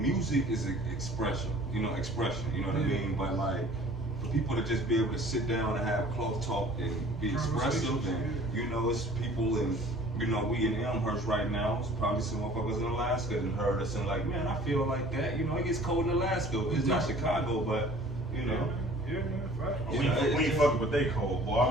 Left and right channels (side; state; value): both; normal; correlation 0.49